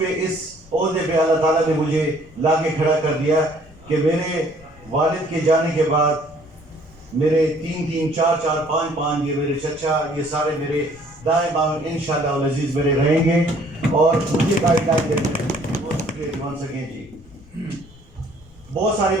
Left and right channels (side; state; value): left; noise; rumble, 24 dB below the sound